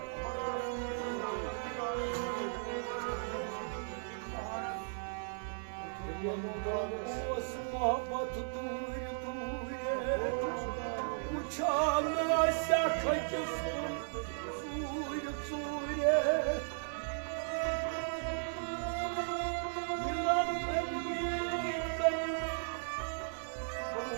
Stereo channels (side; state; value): left; silent; 54 dB below the other